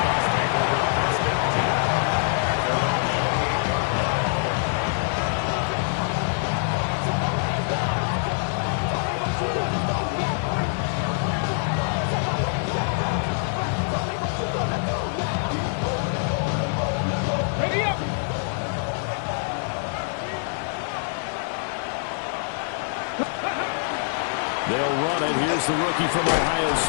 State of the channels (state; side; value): silent; right; 56 dB below the other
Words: They'll run it. Here's the rookie from Ohio